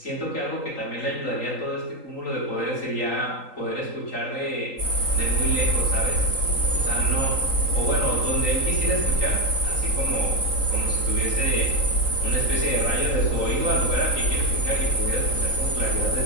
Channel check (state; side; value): late; right; 3.8 ms